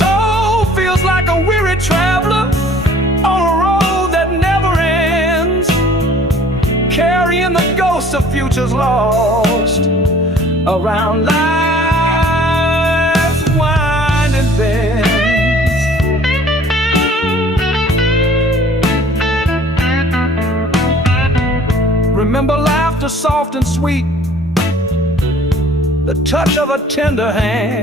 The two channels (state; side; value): normal; both; correlation 0.52